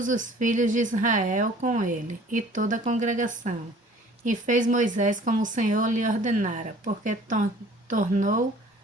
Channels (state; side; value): normal; both; correlation 0.51